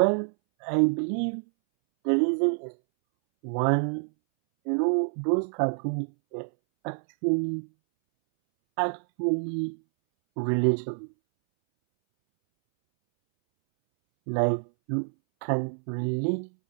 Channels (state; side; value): silent; left; 60 dB below the other